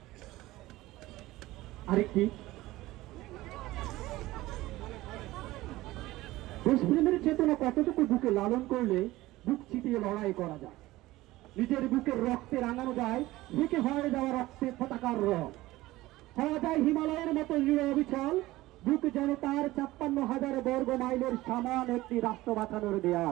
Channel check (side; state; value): left; quieter; 17.8 dB